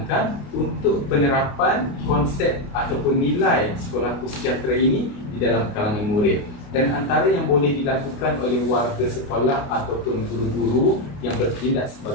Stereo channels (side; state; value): right; late; 29 ms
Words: untuk penerapan konsep ataupun nilai sekolahku sejahtera ini di dalam kalangan murid. Dan antara yang boleh dilakukan oleh warga sekolah ataupun guru-guru yang bertindak